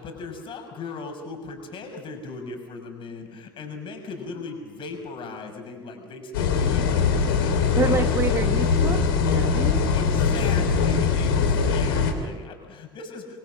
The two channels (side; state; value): right; quieter; 4.3 dB